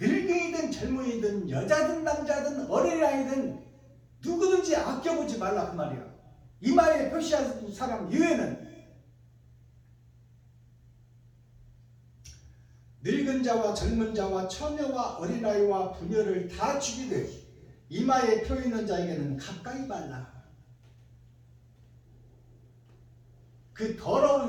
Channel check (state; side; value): identical; both; correlation 1.00